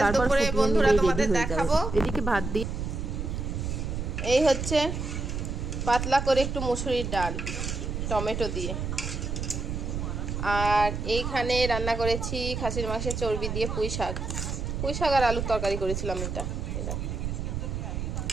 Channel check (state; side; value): noise; right; rumble, 3 dB below the sound